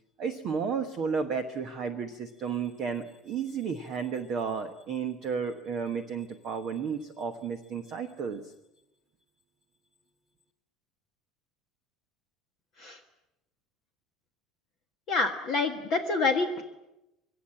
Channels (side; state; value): both; normal; correlation 0.43